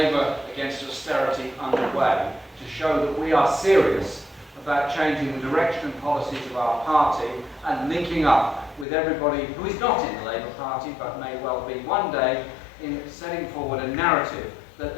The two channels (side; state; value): right; drops out; at 8.8 s